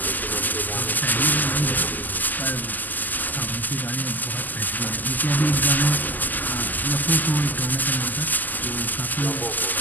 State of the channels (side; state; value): right; late; 0.085 ms